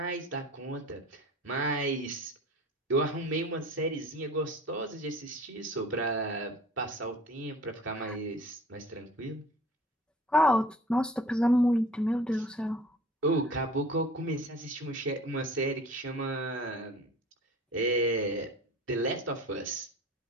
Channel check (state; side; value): normal; both; correlation 0.45